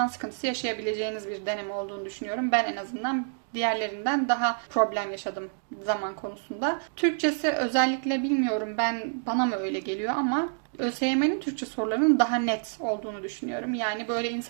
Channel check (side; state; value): left; silent; digital silence